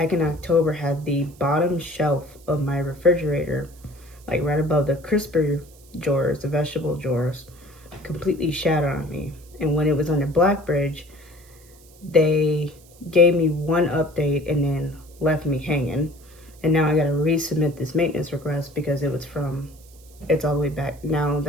in October, had the bottom shelf of my refrigerator, like right above the crisper drawers, the vegetable drawers, completely shattered on me. And when it was under Blackbridge, they gave me one update and then left me hanging. And now I gotta resubmit this maintenance request because it's all the way back now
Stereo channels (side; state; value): right; noise; hiss, 26 dB below the sound